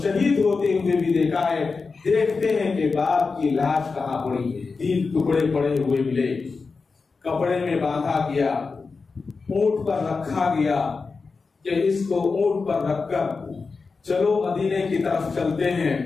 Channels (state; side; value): quieter; right; 4.5 dB